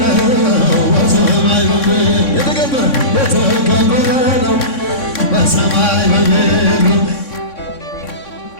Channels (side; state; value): right; late; 3.6 ms